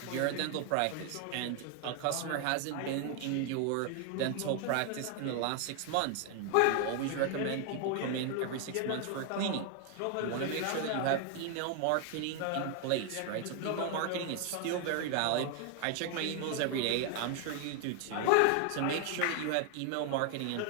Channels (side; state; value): both; different; correlation 0.00